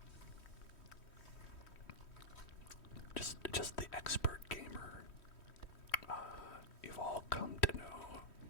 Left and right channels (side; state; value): right; late; 3.1 ms